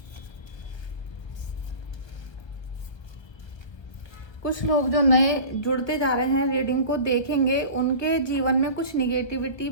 कुछ लोग जो नए जुड़ते जा रहे हैं, रीडिंग को देखेंगे, उनके जीवन में कुछ निगेटिविटी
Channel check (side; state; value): right; late; 1.3 ms